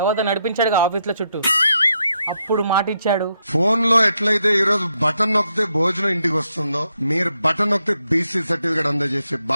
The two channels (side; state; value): both; inverted; correlation -0.80